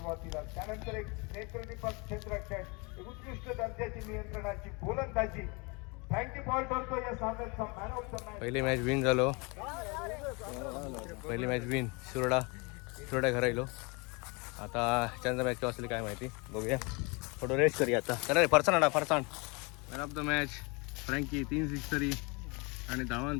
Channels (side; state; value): right; quieter; 29.6 dB